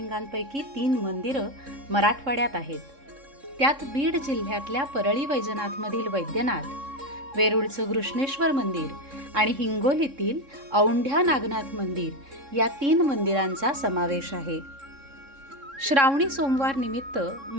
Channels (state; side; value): late; left; 3.6 ms